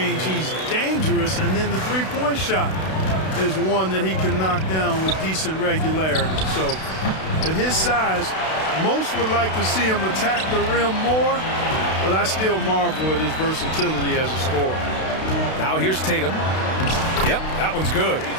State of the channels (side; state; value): right; late; 32 ms